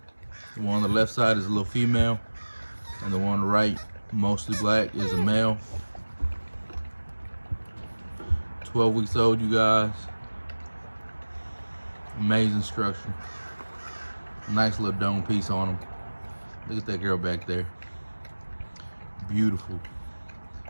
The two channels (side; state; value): both; inverted; correlation -1.00